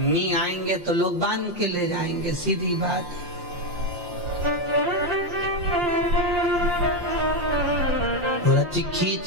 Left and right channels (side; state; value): left; late; 5.7 ms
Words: आएंगे तो लोग बांध के ले जाएंगे, सीधी बात है।